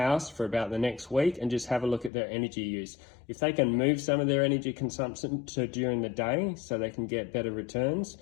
for about the next week and just have a look at their energy use. If they can move some of their energy consumption to during the day so they can get better returns,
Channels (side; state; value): right; drops out; at 2.1 s